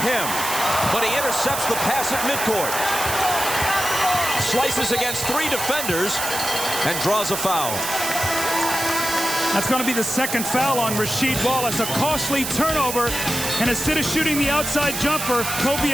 him. But he intercepts the pass at midcourt. Slices against 3 defenders and draws a foul. That's going to be the second foul on Rasheed Wallace. A costly turnover. And instead of shooting the outside jumper, Kobe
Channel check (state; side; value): noise; right; hiss, 4 dB below the sound